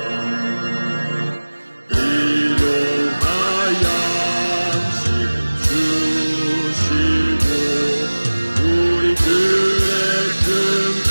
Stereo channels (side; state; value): both; inverted; correlation -1.00